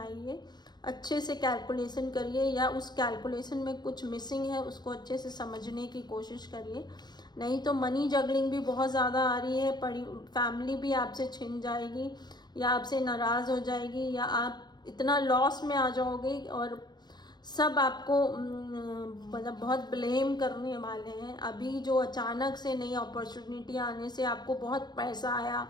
अच्छे से कैलकुलेशन करिए, या उस कैलकुलेशन में कुछ मिसिंग है उसको अच्छे से समझने की कोशिश करिए। नहीं तो मनी जगलिंग भी बहुत ज़्यादा आ रही है, फैमिली भी आपसे छिन जाएगी या आपसे नाराज़ हो जाएगी, या आप इतना लॉस में आ जाओगे और सब आपको मतलब बहुत ब्लेम करने वाले हैं। अभी जो अचानक से नई अपॉर्चुनिटी आने से आपको बहुत पैसा आया,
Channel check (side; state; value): right; late; 0.20 ms